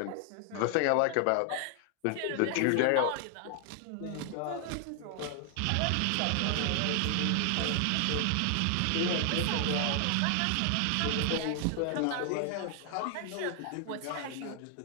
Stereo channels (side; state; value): both; different; correlation 0.00